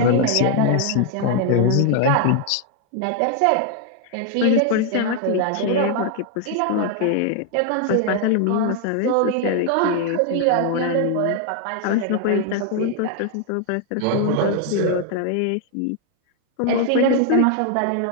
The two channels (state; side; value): different; both; correlation 0.00